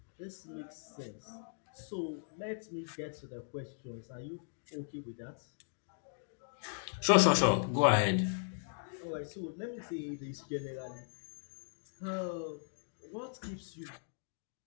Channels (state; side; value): silent; right; digital silence